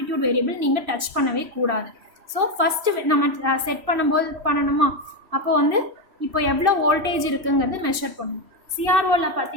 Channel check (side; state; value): left; late; 3.0 ms